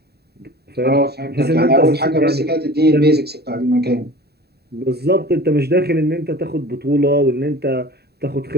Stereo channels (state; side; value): late; left; 0.47 ms